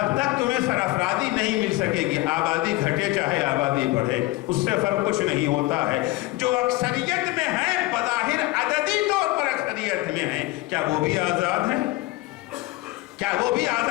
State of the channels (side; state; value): right; quieter; 19.6 dB